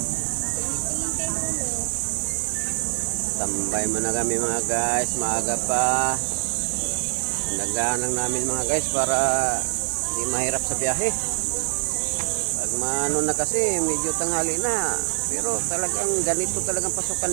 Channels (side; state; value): left; silent; 62 dB below the other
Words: Tambay mo na kami mga guys. Maaga pa. Nagaanang namin mga guys para hindi mahirap sa biyahe. Pag maano na kasi medyo tanghali na. Pero talagang ganito talagang pasukan